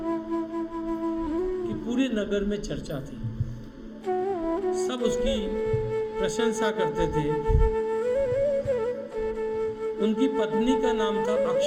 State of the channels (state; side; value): identical; both; correlation 1.00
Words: की पूरे नगर में चर्चा थी। सब उसकी प्रशंसा करते थे। उनकी पत्नी का नाम था